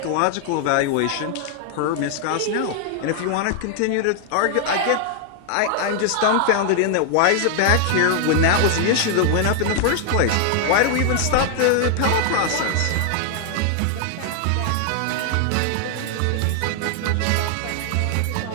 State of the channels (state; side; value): different; both; correlation 0.00